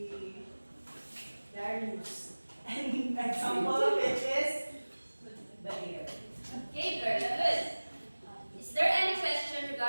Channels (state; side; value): inverted; both; correlation -1.00